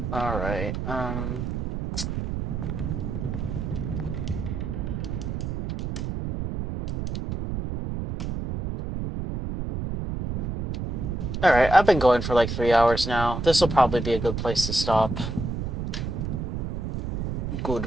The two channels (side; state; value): right; noise; rumble, 3 dB below the sound